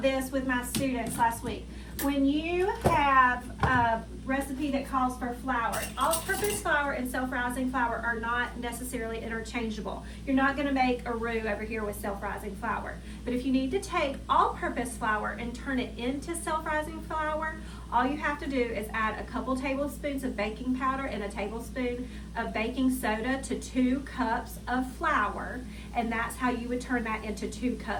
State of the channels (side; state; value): both; identical; correlation 1.00